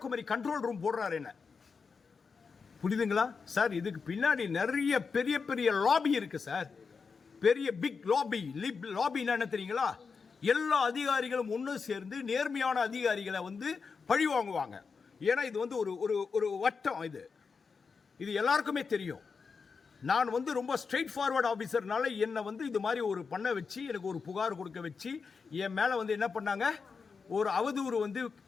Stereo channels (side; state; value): right; quieter; 5.2 dB